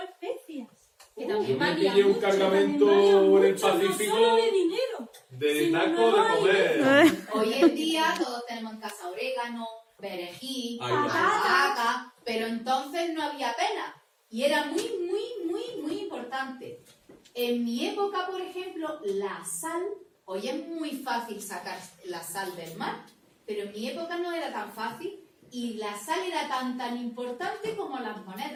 especias. Que Yo también me valía pillé un mucho. cargamento También en valía el mucho, no Pacífico solo de dinero. de sino taco de no comer. Hoy en día todos tenemos en casa orégano, perejil, Ahí va. albahaca, pero entonces no había pena. Y era muy importante. En mi época, por ejemplo, la sal, hoy es muy fácil sacar la sal del mar, pero en mi época no era tan fácil y la sal era tan importante como las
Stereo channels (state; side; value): identical; both; correlation 1.00